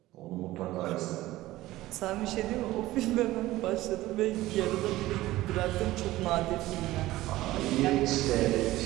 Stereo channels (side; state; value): left; quieter; 16.8 dB